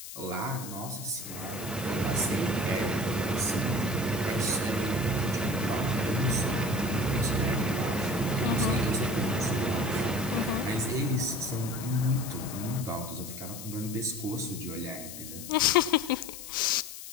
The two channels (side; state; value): left; noise; hiss, 11 dB below the sound